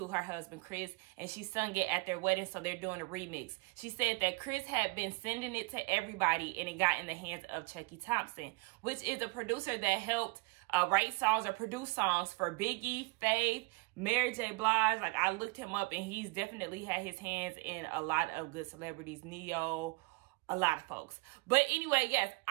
her husband, Chris, and she sung it at their wedding, so they're doing a remix. She said that Chris had been sending it to everybody, and it got in the hands of Chucky Thompson, which is a producer that helped write songs or produce songs for Biggie, Faith, Mary J. Blige. Like, I looked him up, and he's definitely had his hands in a lot of good celebrities, Neo, a lot of folks. But anyway, yes,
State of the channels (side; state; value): left; quieter; 27.6 dB